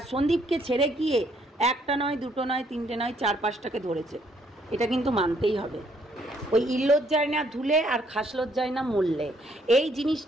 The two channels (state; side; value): normal; both; correlation 0.68